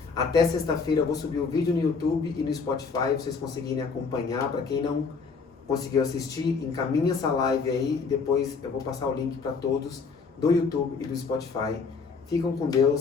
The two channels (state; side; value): quieter; right; 5.0 dB